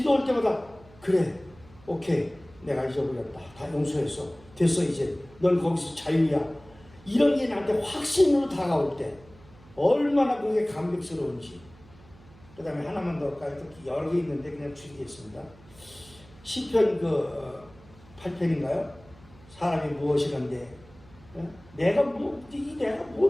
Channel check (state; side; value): noise; right; hum, 24 dB below the sound